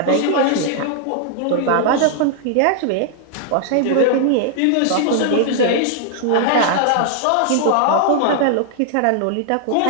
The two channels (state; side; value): different; both; correlation 0.00